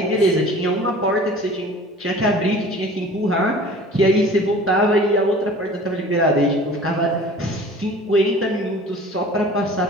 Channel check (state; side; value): normal; both; correlation 0.44